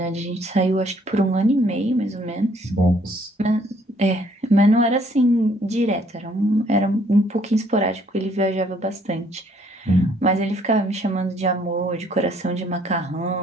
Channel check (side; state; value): both; normal; correlation 0.64